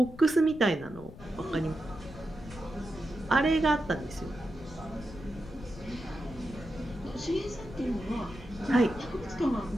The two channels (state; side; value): noise; left; rumble, 15 dB below the sound